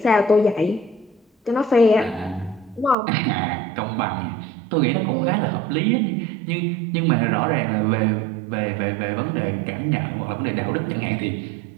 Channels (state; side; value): drops out; left; at 3.0 s